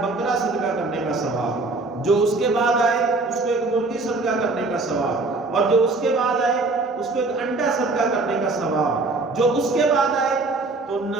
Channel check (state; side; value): quieter; left; 3.5 dB